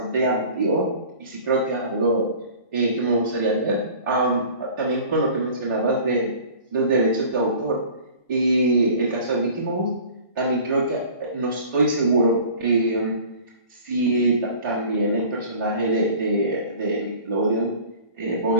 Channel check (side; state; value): both; inverted; correlation -0.45